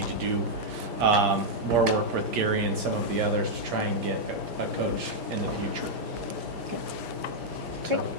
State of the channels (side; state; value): left; late; 5.1 ms